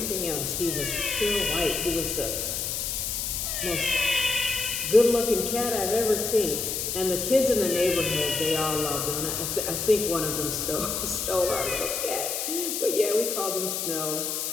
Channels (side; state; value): left; noise; hiss, 2 dB below the sound